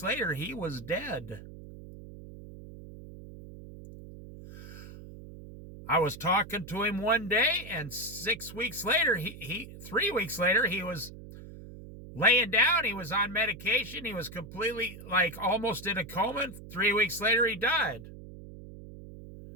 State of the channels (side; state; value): right; noise; hum, 15 dB below the sound